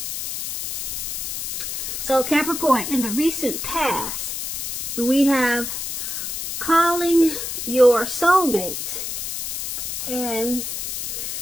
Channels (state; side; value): noise; left; hiss, 4 dB below the sound